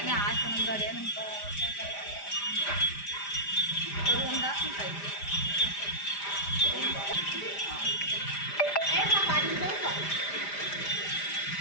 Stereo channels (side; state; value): right; late; 5.0 ms